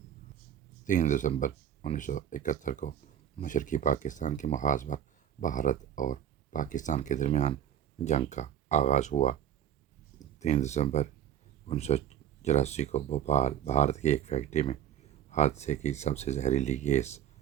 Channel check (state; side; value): quieter; left; 9.7 dB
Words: 3 دسمبر 1971 کو مشرقی پاکستان کے محاذ پر بھارت اور پاکستان کے درمیان جنگ کا آغاز ہوا۔ 3 دسمبر 1984 کو بھوپال، بھارت کی ایک فیکٹری میں حادثے کی سب سے زہریلی